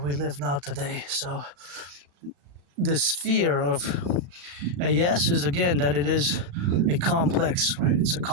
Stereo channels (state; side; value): late; left; 36 ms